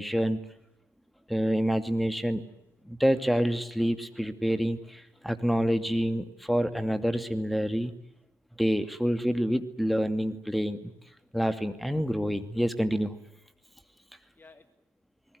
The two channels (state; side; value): normal; both; correlation 0.97